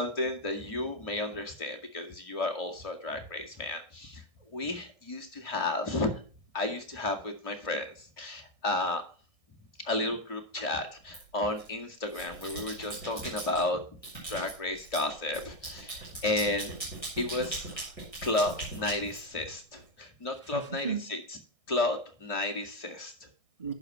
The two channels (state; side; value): late; right; 1.6 ms